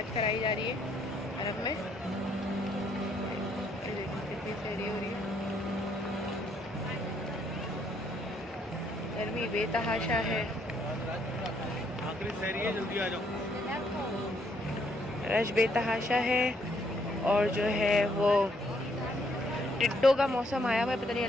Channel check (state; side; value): normal; both; correlation 0.70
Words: कराई जा रही है अरब में। कितनी सहरी हो रही है, गर्मी बेतहाशा है, आखिरी सहरी है, जल्दी आ जाओ। रश बेतहाशा है। और जो है वो टिड्डों का मौसम आया हुआ है, पता नहीं